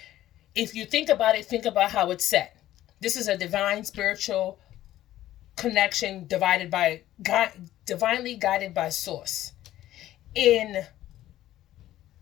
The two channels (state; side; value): quieter; right; 13.9 dB